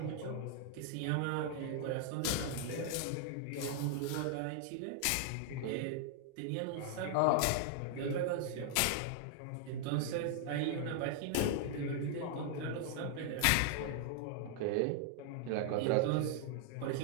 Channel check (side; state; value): both; different; correlation 0.00